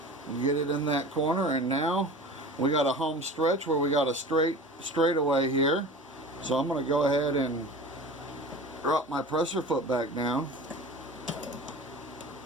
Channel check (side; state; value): both; normal; correlation 0.37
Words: Get it in that corner, and now we got a home stretch where we got a straightaway here. So I'm going to go ahead and drop my presser foot back down,